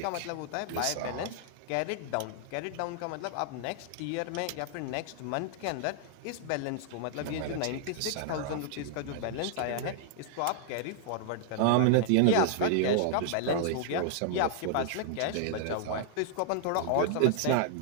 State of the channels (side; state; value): both; different; correlation -0.01